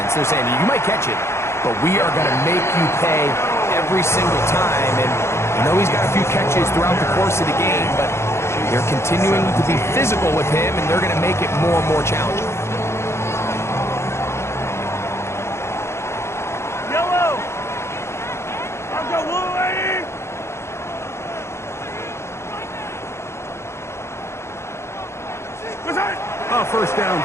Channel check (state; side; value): late; right; 0.13 ms